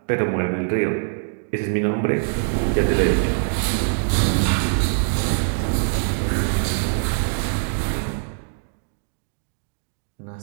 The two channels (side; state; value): left; silent; digital silence